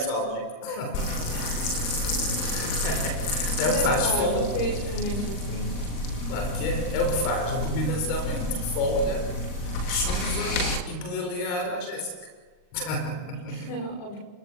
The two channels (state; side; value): late; right; 39 ms